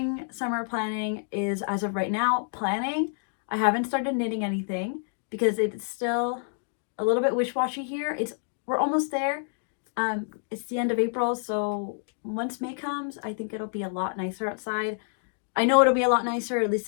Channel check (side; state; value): right; silent; digital silence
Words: summer planning is, as of right now, planning. I haven't started knitting anything because it's still a little bit wish-washy here. We're almost there. It's the end of April, so once May comes, I think it'll be a lot nicer outside. I know it'll be a lot nicer, at